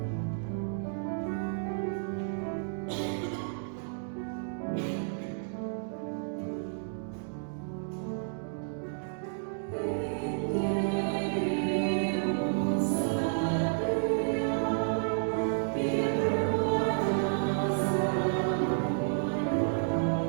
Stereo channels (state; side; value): silent; left; digital silence